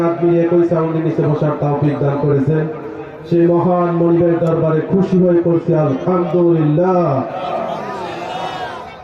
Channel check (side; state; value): both; identical; correlation 1.00